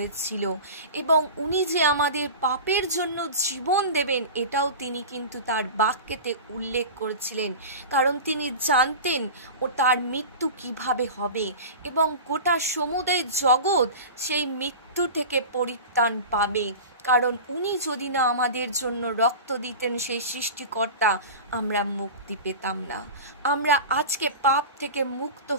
এবং উনি যে আমাদের পাপের জন্য জীবন দেবেন এটাও তিনি কিন্তু তার বাক্যেতে উল্লেখ করেছিলেন, কারণ তিনি জানতেন ও তার মৃত্যু কিভাবে হবে এবং গোটা সমুদয় জগৎ সেই মৃত্যু থেকে পরিত্রাণ পাবে। কারণ উনি যদি না আমাদের জন্য রক্ত দিতেন, সেই সৃষ্টিকর্তা, আমরা মুক্তি পেতাম না, আমরা আজকে পাপ থেকে মুক্ত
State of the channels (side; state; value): both; inverted; correlation -0.32